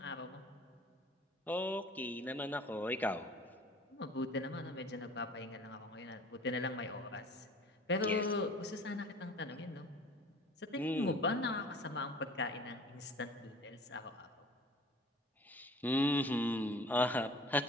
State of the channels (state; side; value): normal; both; correlation 0.47